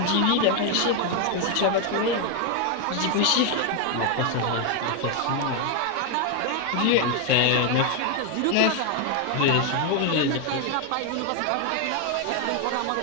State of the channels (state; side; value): different; both; correlation 0.01